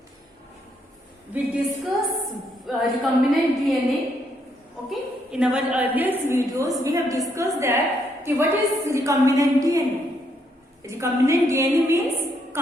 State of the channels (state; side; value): normal; both; correlation 0.74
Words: We discuss recombinant DNA. Okay, in our earlier videos we have discussed that what is recombinant DNA. Recombinant DNA means